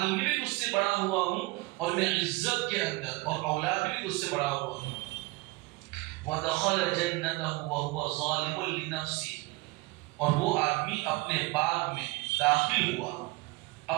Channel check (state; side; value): quieter; left; 23.3 dB